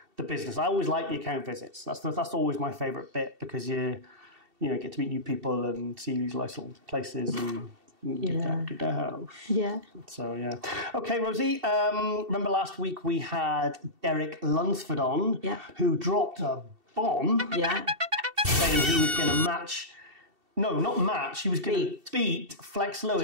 the business. I always like the account visits. That's always my favourite bit, because you get to meet new people and see these nice little places and. Get out of the house. Yeah. So, yeah. Okay, Rosie, remember last week we had Derek Lunsford on, who dropped a bomb saying he was going to match... No, not match. He was going to beat Flex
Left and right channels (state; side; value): late; left; 2.7 ms